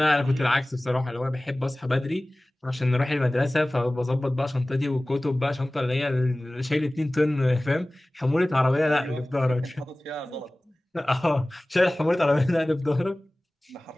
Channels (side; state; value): both; normal; correlation 0.98